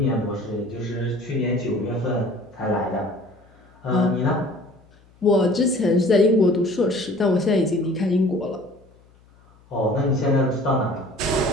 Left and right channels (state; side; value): noise; left; hum, 29 dB below the sound